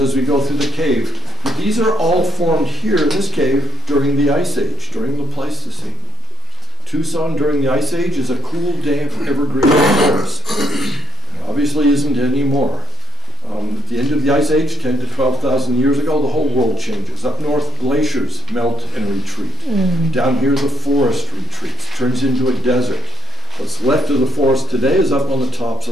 we go through the cave. But these are all formed here in this cave during the Ice Age, during the Pleistocene. Tucson during the Ice Age is a cool, damp, evergreen forest. Obviously isn't anymore. At the end of the Ice Age, 10 to 12,000 years ago, the whole world changes. Up north, glaciers melt and retreat. Down here, the forest retreats, turns into a desert. What's left of the forest today is up on the tops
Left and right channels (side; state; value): both; normal; correlation 0.58